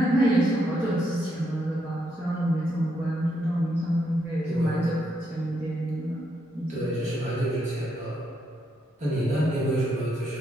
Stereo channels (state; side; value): normal; both; correlation 0.78